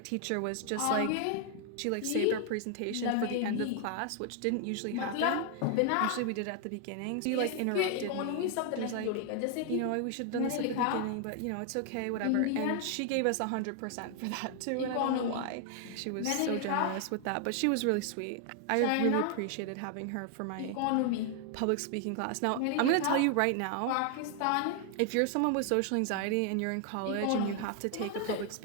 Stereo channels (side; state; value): both; different; correlation 0.00